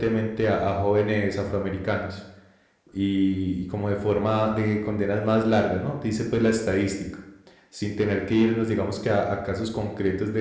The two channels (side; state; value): both; identical; correlation 1.00